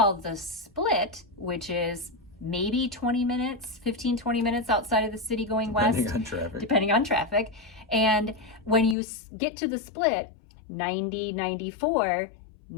the Split, which is maybe 20 minutes, 20 minutes outside of the city going west. Depending on traffic. And when you get to the Split, 94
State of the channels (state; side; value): drops out; right; at 9.0 s